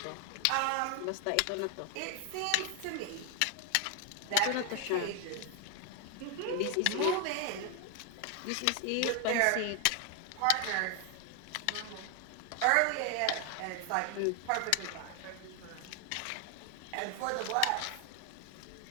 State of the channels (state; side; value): different; both; correlation 0.00